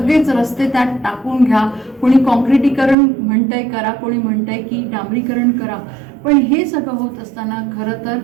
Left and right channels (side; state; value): left; drops out; at 3.0 s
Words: रस्ते त्यात टाकून घ्या. कोणी कॉन्क्रिटीकरण म्हणतंय करा, कोणी म्हणतंय की डांबरीकरण करा, पण हे सगळं होत असताना खरं तर